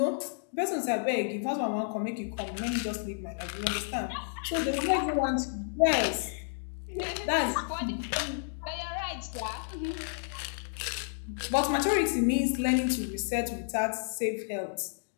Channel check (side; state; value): right; silent; digital silence